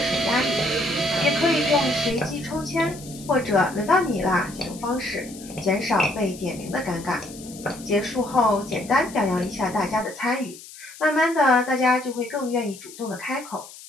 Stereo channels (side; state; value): left; noise; hiss, 17 dB below the sound